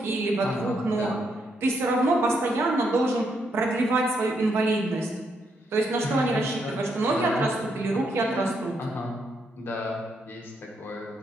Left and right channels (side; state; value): both; normal; correlation 0.77